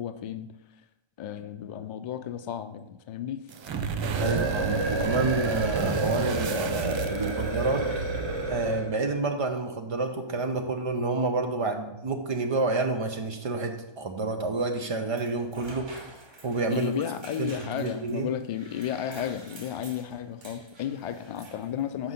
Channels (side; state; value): left; late; 1.3 ms